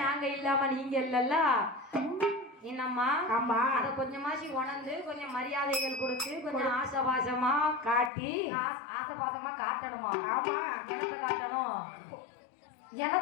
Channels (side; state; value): right; drops out; at 8.1 s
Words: நாங்க இல்லாம நீங்க இல்லல்ல. என்னம்மா? ஆமா அத கொஞ்சமாசி உணர்ந்து கொஞ்சம் மரியாதைகள் கொடுத்து கொஞ்சம் ஆசபாசமா காட்டி ஆசபாசமா காட்டணுமா? ஆமா எனத்தை காட்டணும்.